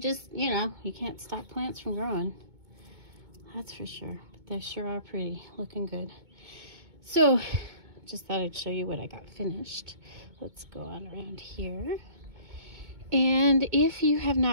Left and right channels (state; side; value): late; left; 2.2 ms